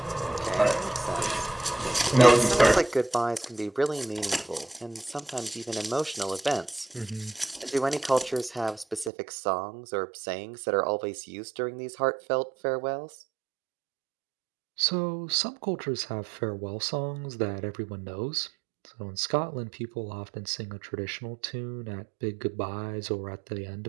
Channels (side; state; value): left; drops out; at 9.1 s